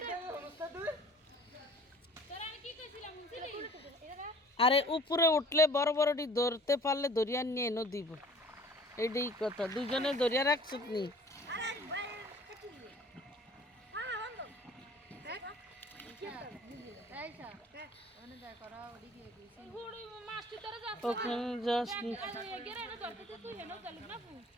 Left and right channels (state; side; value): normal; both; correlation 0.50